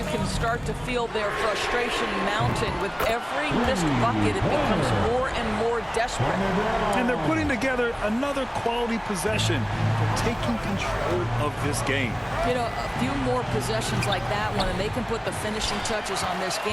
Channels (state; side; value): identical; both; correlation 1.00